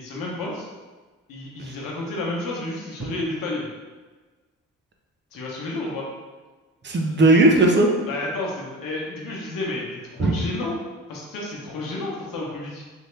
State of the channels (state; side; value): normal; both; correlation 0.32